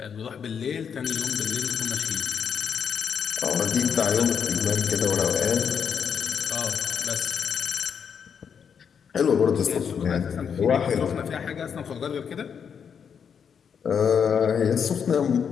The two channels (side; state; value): right; quieter; 7.2 dB